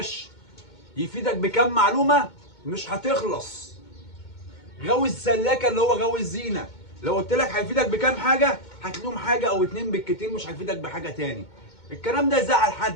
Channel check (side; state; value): right; late; 2.2 ms